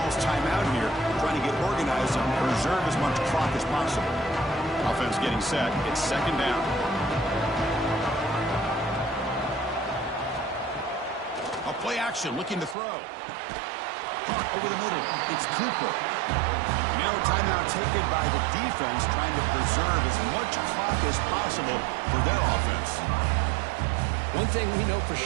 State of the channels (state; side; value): drops out; left; at 12.8 s